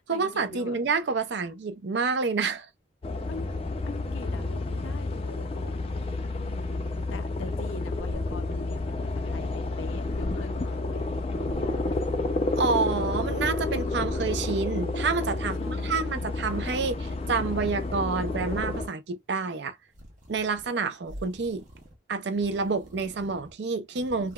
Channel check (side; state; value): both; normal; correlation 0.33